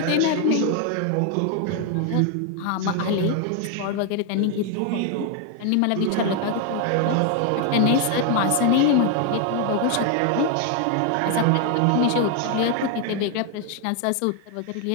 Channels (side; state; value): both; different; correlation 0.01